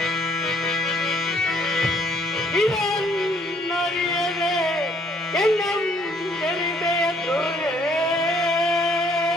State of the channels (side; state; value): both; normal; correlation 0.64